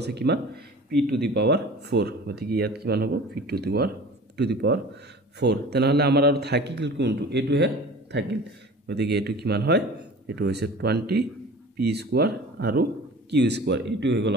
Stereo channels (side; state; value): both; normal; correlation 0.41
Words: কিমান p টু দি পাৱাৰ 4 গতিকে ইয়াত কিমান হ'ব p টু দি পাৱাৰ 4 তেনহলে আমাৰ আৰু থাকিল কোনটো এটো হে থাকিল গতিকে এটো কিমান হয় এটো হৈছে 20p² আৰু q² এটো হৈ গল